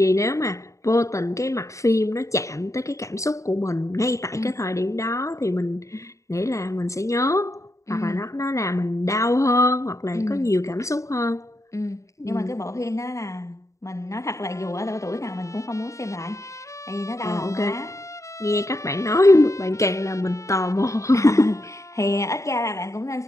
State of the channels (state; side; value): late; right; 0.15 ms